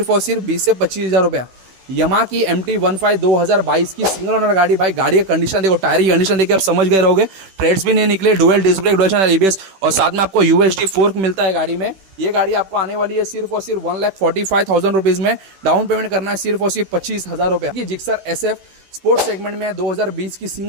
और सिर्फ 20 से 25,000 रुपया। यमाहा की MT15 2022 की सिंगल ओनर गाड़ी, भाई गाड़ी का कंडीशन देखो, टायर की कंडीशन देखिए आप समझ गए रहोगे, ट्रेड्स भी नहीं निकले, dual disc brake dual channel ABS और साथ में आपको UHD फोर्क मिलता है गाड़ी में। ये गाड़ी आपको आने वाली है सिर्फ और सिर्फ 1,45,000 रुपीज में। डाउन पेमेंट करना है सिर्फ और सिर्फ 25,000 रुपया। जिक्सर SF स्पोर्ट्स सेगमेंट में 2020 की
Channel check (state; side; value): late; left; 16 ms